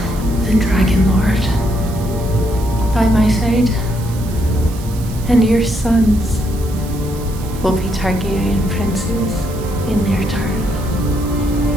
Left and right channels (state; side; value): noise; right; hiss, 18 dB below the sound